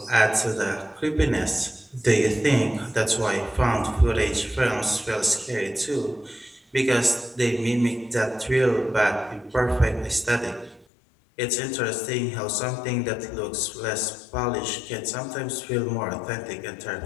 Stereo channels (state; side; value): drops out; right; at 10.9 s